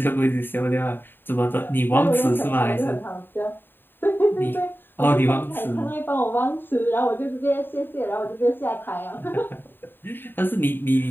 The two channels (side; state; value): right; late; 0.096 ms